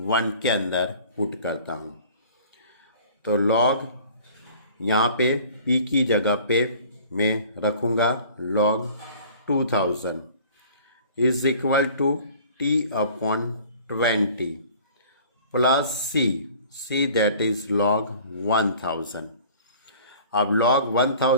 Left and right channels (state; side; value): inverted; both; correlation -0.49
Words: 1 के अंदर पुट करता हूं, तो लॉग यहाँ पे p की जगह पे मैं रखूँगा log 2000 is equal to t upon 20 plus c that is log 1000। अब log